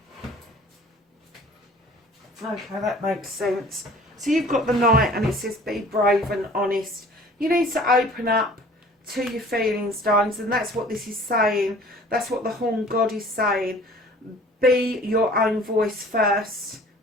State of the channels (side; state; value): both; normal; correlation 0.49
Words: Okay, that makes sense. So you've got the Knight and it says be brave and honest. You need to open up to your feelings, darlings, and that's what this is saying. That's what the Horn God is saying. Be your own voice first.